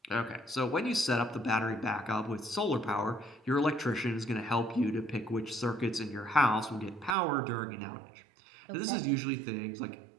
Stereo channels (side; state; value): left; drops out; at 7.2 s